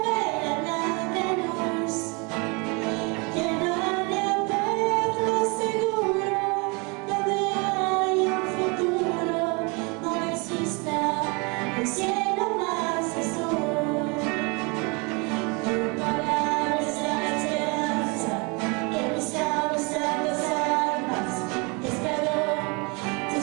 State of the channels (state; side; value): quieter; left; 30.2 dB